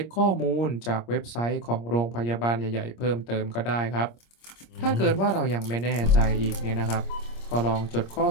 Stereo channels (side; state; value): right; late; 26 ms